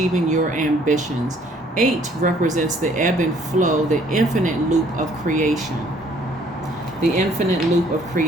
your ambitions. 8 represents the ebb and flow, the infinite loop of creation. The infinite loop of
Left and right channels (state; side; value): normal; both; correlation 0.61